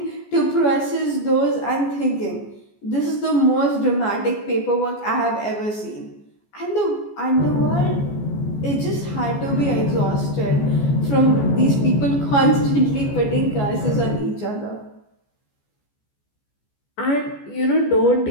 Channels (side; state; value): right; late; 14 ms